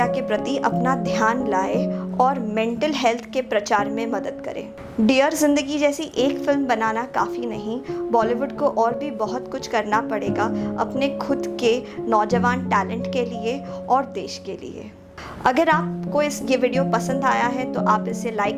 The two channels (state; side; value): identical; both; correlation 1.00